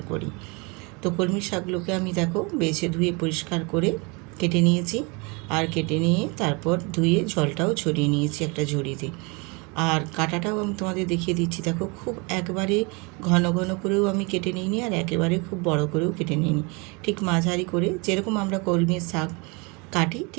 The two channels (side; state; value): left; quieter; 29.4 dB